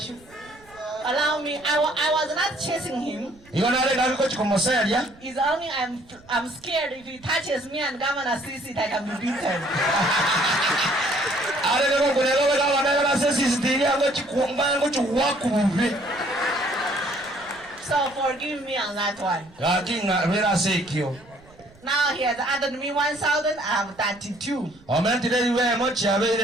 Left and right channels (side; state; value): right; noise; rumble, 26 dB below the sound